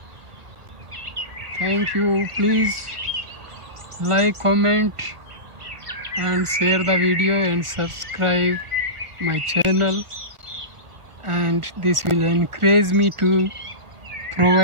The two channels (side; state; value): left; late; 1.5 ms